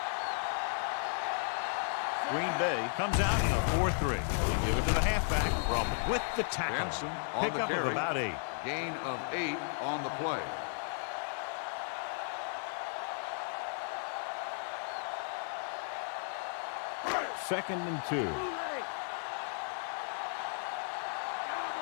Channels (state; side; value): silent; right; digital silence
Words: Green Bay comes out in a 4-3. They give it to the halfback. Roman with the tackle. Jensen on the Pickup of carry. about 8. Gain of 8 on the play. Second and 2.